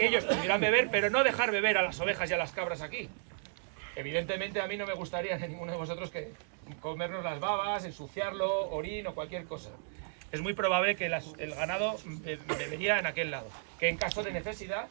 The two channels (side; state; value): left; silent; digital silence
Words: ellos pudieran beber, pero no dejar beber a las ovejas y a las cabras aquí. Evidentemente a mí no me gustaría a ninguno de vosotros que comernos las babas, ensuciarlo, orín o cualquier cosa. Es muy probable que el ganado bebería en aquel lado, que en caso de necesidad